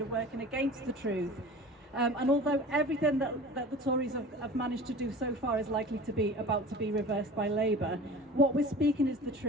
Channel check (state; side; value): normal; both; correlation 0.39